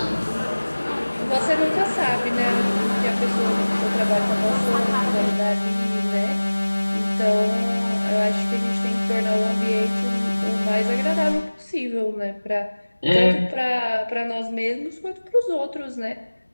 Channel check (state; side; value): inverted; both; correlation -1.00